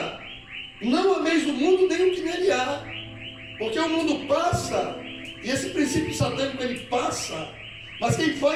não ameis do mundo nem o que nele há. Porque o mundo passa, e esse princípio satânico ele passa, mas quem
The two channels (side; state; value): both; identical; correlation 1.00